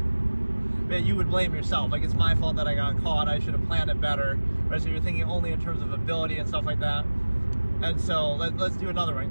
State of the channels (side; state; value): both; inverted; correlation -1.00